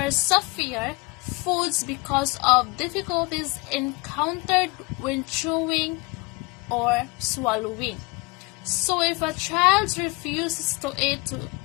softer foods because of difficulties encountered when chewing or swallowing. So if a child refuses to eat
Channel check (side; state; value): right; quieter; 26.4 dB